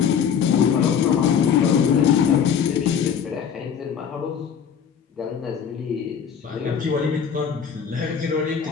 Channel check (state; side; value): quieter; right; 7.5 dB